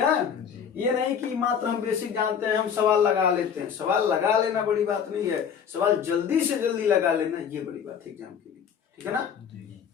ये नहीं कि मात्र हम बेसिक जानते हैं हम सवाल लगा लेते हैं, सवाल लगा लेना बड़ी बात नहीं है, सवाल जल्दी से जल्दी लगा लेना ये बड़ी बात है एग्जाम के लिए, ठीक है ना।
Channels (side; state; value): right; quieter; 7.6 dB